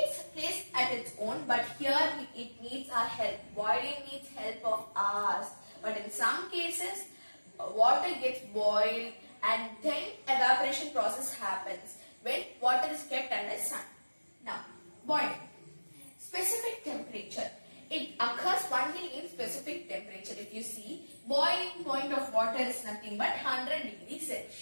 place at its own, but here it needs our help. Boiling needs help of ours. But in some cases, water gets boiled and then evaporation process happens when water is kept under sun. Now, boiling. Specific temperature. It occurs only in specific temperature. If you see, boiling point of water is nothing but 100 degrees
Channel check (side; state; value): both; inverted; correlation -1.00